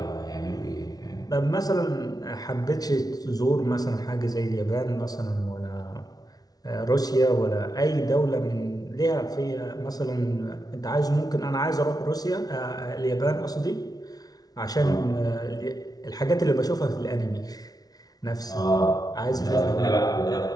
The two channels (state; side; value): late; right; 0.19 ms